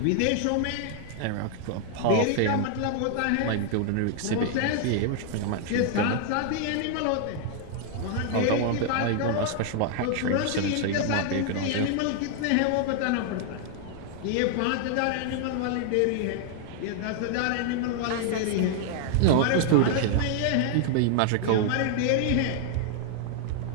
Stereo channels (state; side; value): different; both; correlation 0.00